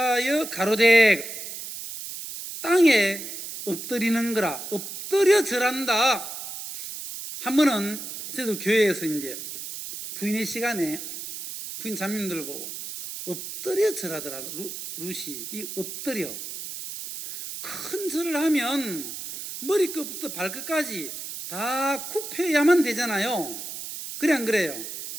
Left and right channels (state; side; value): noise; right; hiss, 8 dB below the sound